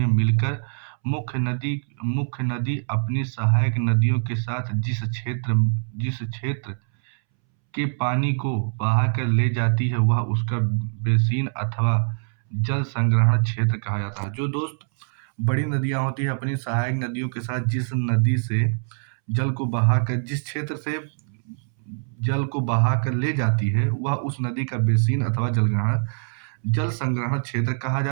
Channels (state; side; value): silent; left; 63 dB below the other